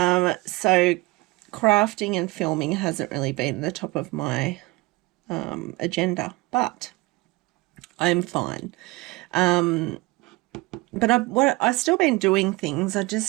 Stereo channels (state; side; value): quieter; left; 22.6 dB